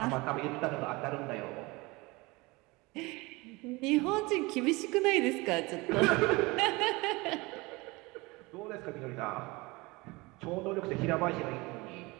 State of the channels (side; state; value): left; quieter; 23.8 dB